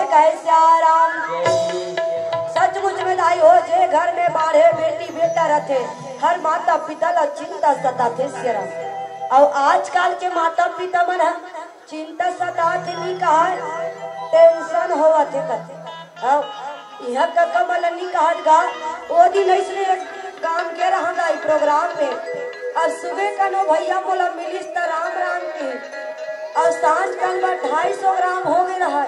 कहे सियाराम। सचमुच में दाई हो जे घर में बाढ़े बेटी बेटा रहते हर माता पिता ला चिंता सताते सियाराम। और आजकल के माता पिता मन चिंता सताते नहीं कहा टेंशन होवा थे कहते यह का कमल नहीं कहत गा वो दिन ऐसे काम के रहा गाई प्रोग्राम में और सुबह का नो भैया बोला मिलिस त राम राम की और सांझ कल 250 ग्राम हो गए रहा।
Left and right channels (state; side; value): identical; both; correlation 1.00